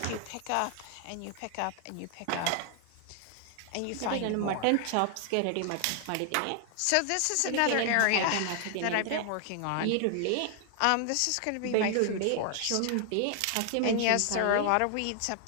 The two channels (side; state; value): both; different; correlation 0.00